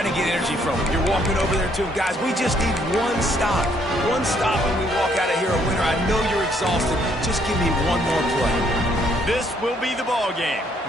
to get energy from them. You're walking over there, too. Guys, we just need one stop. One stop and we walk out of here a winner. I know you're exhausted. Just give me one more play. This will be the ball game.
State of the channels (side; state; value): both; normal; correlation 0.68